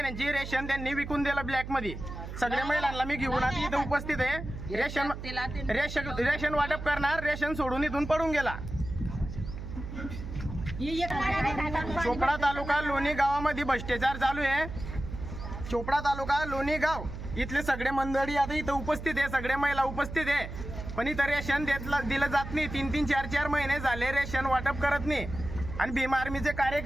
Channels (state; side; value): noise; right; hum, 9 dB below the sound